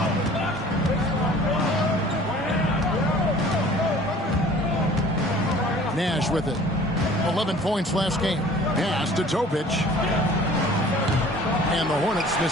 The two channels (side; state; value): both; normal; correlation 0.49